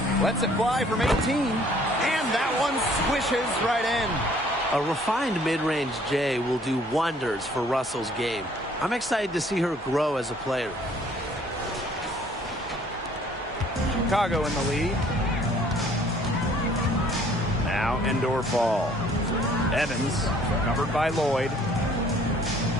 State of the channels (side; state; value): both; normal; correlation 0.58